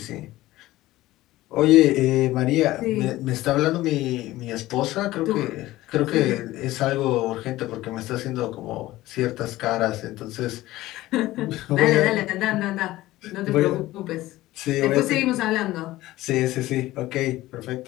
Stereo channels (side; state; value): right; quieter; 16.8 dB